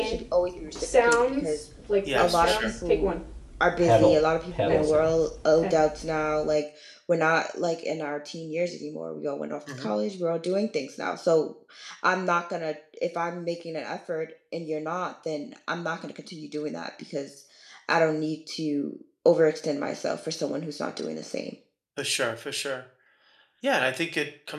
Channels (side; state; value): both; identical; correlation 1.00